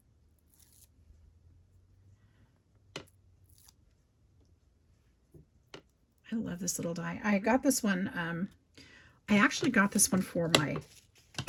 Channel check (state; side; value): identical; both; correlation 1.00